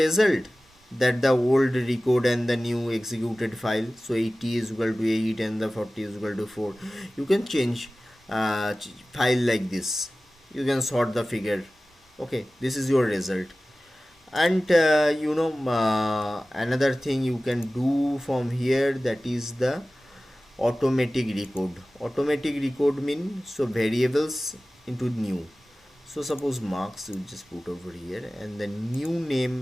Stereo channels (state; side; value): normal; both; correlation 0.97